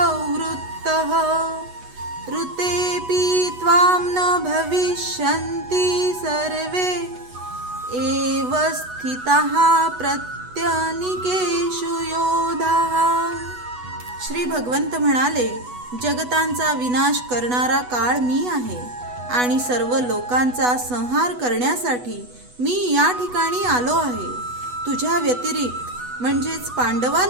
ऋतेऽपि त्वां न भविष्यन्ति सर्वे एव स्थिताः प्रत्यनीकेषु योधाः। श्री भगवंत म्हणाले, जगतांचा विनाश करणारा काळ मी आहे आणि सर्व लोकांचा संहार करण्यासाठी मी या ठिकाणी आलो आहे। तुझ्या व्यतिरिक्त म्हणजेच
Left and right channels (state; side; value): late; left; 8.1 ms